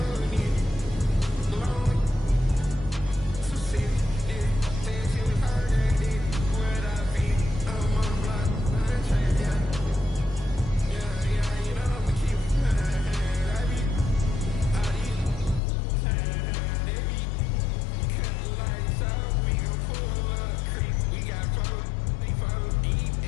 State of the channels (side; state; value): right; drops out; at 15.6 s